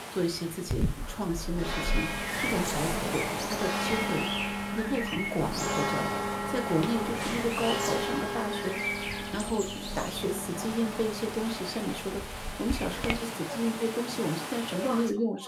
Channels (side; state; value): both; identical; correlation 1.00